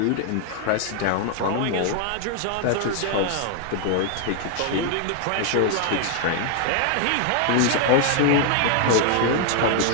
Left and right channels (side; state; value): both; different; correlation 0.00